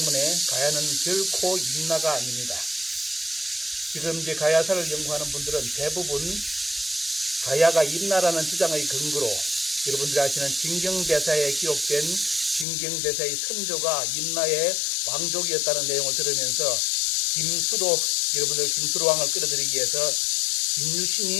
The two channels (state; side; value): drops out; right; at 12.7 s